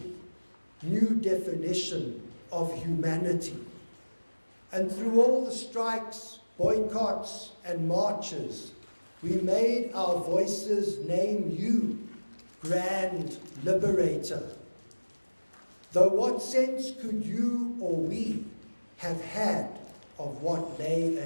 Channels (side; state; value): both; inverted; correlation -1.00